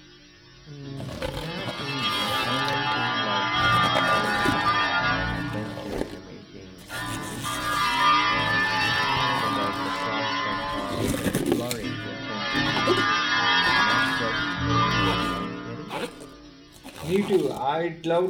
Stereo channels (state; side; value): identical; both; correlation 1.00